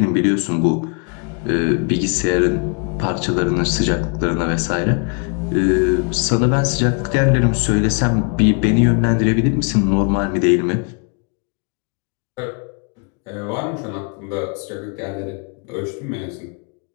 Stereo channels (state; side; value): quieter; right; 37.5 dB